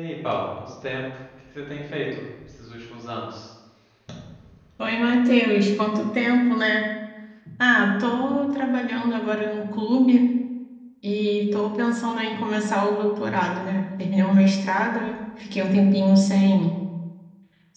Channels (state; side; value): identical; both; correlation 1.00